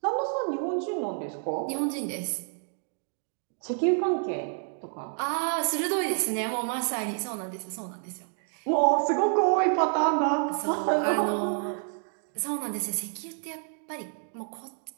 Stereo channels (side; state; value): left; silent; 59 dB below the other